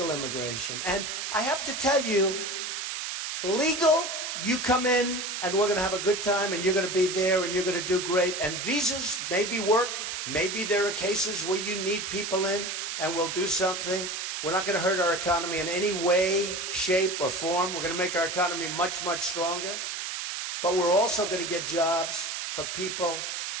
immigration. And I have to tell you, legal, you come in and we're going to have a good time and you're going to be there and you're going to do great. And visas maybe work. Maybe there are cases where you need people in and we'll do something. We're not going to hurt our economy in any way, shape, or form. We're going to make our economy much, much stronger. But we're also going to get jobs for people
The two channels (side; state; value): right; noise; hiss, 4 dB below the sound